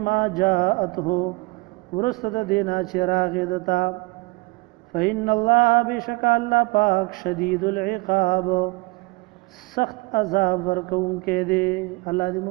ما جاءته ورسته دینا چراغ دتا فإن الله بشک الله پاک شدید العقاب سخت عذاب ورکون کې دی الله دې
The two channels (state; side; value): quieter; left; 25.7 dB